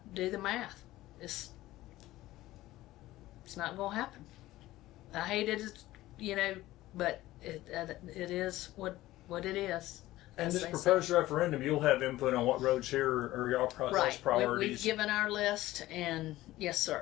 Do the math. It's not going to happen. I hate it, you know, but it is what it is. And this proposed referendum, you'll have input on what roads here are your right. priorities. We've given our list, and yes,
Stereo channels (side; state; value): right; quieter; 16.4 dB